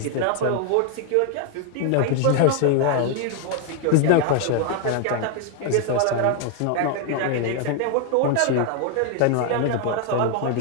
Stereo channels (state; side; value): different; both; correlation 0.00